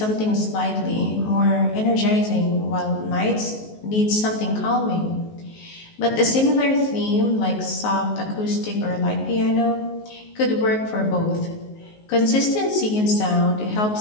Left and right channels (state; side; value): late; right; 19 ms